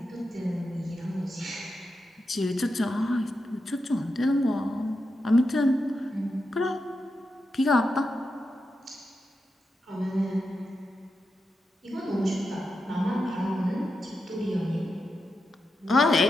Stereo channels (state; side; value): normal; both; correlation 0.88